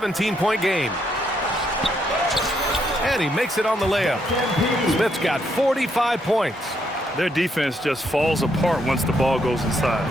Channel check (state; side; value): normal; both; correlation 0.75